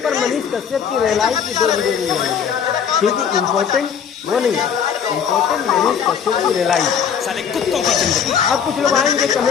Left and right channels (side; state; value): right; quieter; 7.6 dB